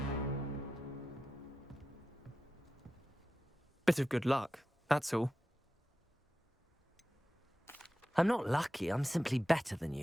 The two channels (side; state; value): both; normal; correlation 0.92